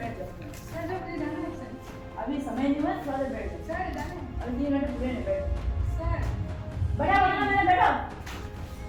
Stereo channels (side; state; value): both; identical; correlation 1.00